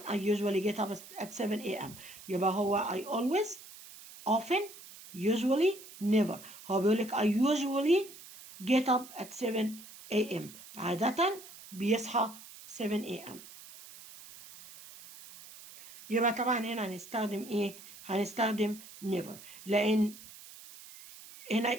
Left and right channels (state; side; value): noise; right; hiss, 17 dB below the sound